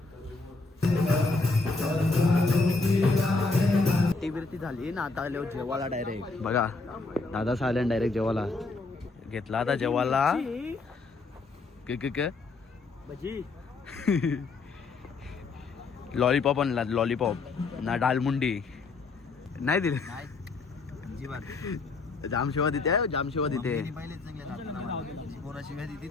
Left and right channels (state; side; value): quieter; right; 3.8 dB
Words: ती झाली ना. आता आलो जेवायला डायरेक्ट बघा. दादा सायलेंट डायरेक्ट जेवायला घेतला. आता जेवायला लॉलीपॉप आणला. लॉलीपॉप ना डालमुंडी नाही दिले. जामशिवा देते जामशिवा देते. पोरा शिव्या देते